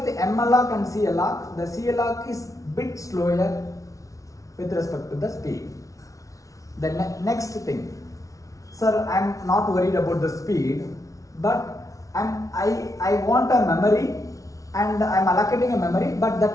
the malloc and calloc, the calloc is bit slower with respect to the speed. The next thing, sir, I am not worried about the speed, but I want a memory and I am allocating a memory, but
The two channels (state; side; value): late; right; 0.16 ms